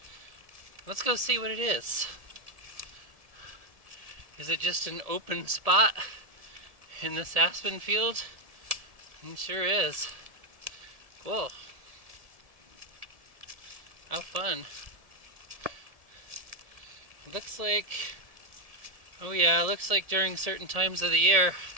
Let's go see what it is. Is it just an open spot in this aspen field? It sure is. Cool. How fun. It looks like, oh yeah, it looks like during certain times of the year,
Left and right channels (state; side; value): late; left; 1.7 ms